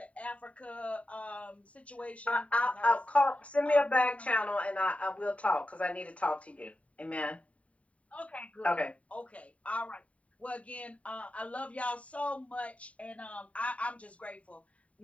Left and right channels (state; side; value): late; right; 0.066 ms